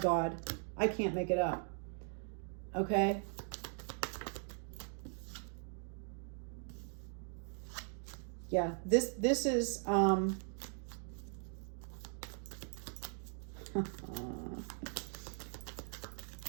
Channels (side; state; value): left; silent; 51 dB below the other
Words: I can't make it up. Okay? Yeah, this is